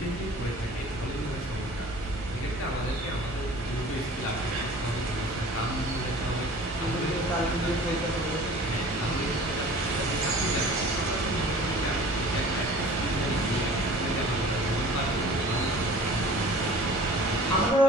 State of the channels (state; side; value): normal; both; correlation 0.45